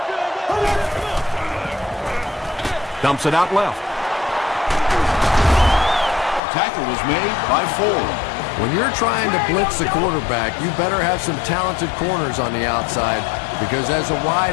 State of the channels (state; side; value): drops out; right; at 6.4 s